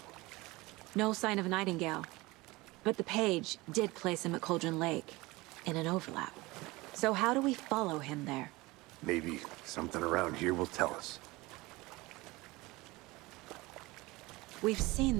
No sign of Nightingale. But the page did place him at Cauldron Lake, in an overlap. So how do we follow him there? Maybe something around here will tell us. We've seen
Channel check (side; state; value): left; quieter; 21.7 dB